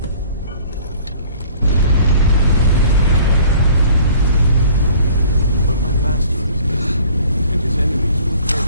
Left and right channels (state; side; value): inverted; both; correlation -0.51